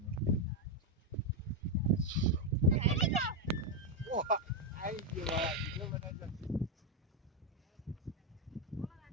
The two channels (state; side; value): normal; both; correlation 0.04